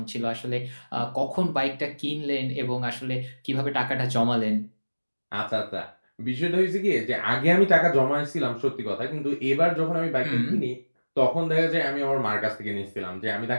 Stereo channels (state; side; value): inverted; both; correlation -1.00